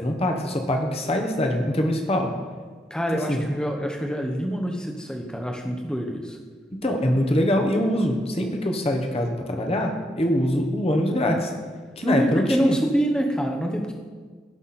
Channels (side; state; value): both; normal; correlation 0.79